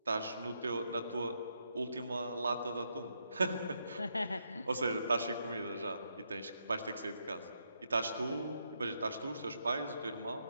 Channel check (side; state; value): both; inverted; correlation -0.79